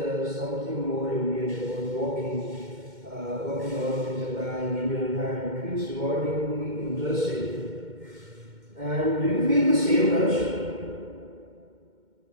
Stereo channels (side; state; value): left; late; 2.1 ms